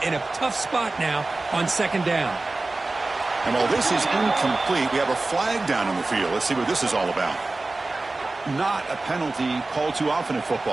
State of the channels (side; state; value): left; quieter; 3.2 dB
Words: in a tough spot now on second down. And while this is incomplete, we have a flag down on the field. Let's see what this is all about. Not a penalty called too often in